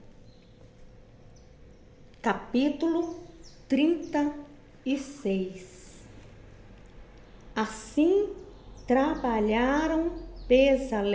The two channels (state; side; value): identical; both; correlation 1.00